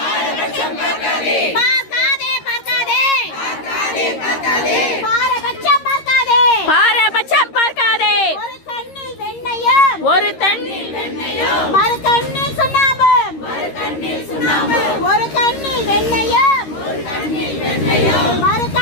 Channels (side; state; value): right; late; 13 ms